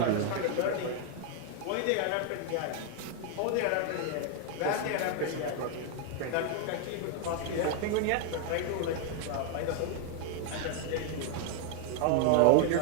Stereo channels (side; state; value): both; different; correlation 0.00